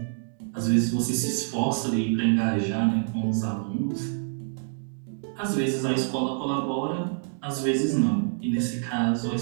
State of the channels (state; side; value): silent; left; digital silence